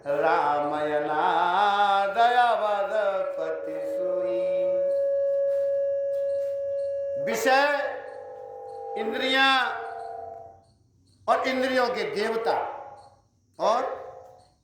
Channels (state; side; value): identical; both; correlation 1.00